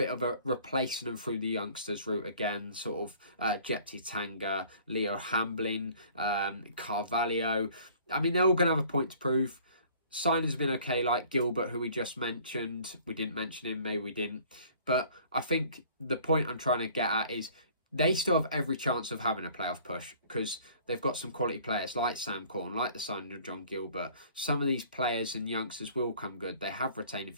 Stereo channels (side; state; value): both; inverted; correlation -0.52